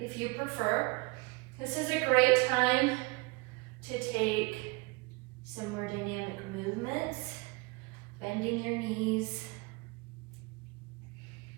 you prefer. This is a great time to take some more dynamic movements, bending your knees,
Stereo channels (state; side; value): quieter; left; 26.7 dB